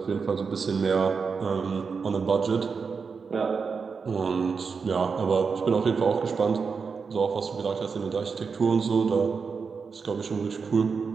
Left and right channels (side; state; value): left; quieter; 5.4 dB